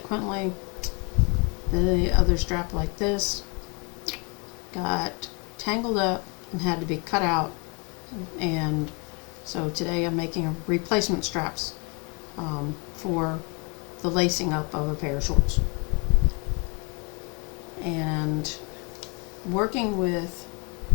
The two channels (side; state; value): right; quieter; 32.5 dB